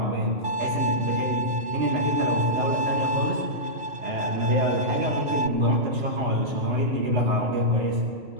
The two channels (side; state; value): left; late; 2.6 ms